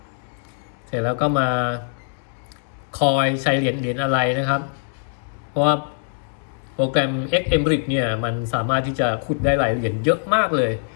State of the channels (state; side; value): silent; right; digital silence